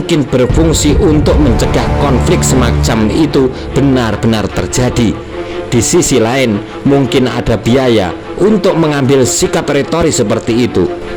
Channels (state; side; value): identical; both; correlation 1.00